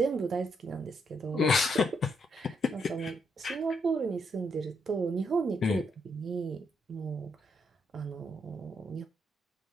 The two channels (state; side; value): normal; both; correlation 0.77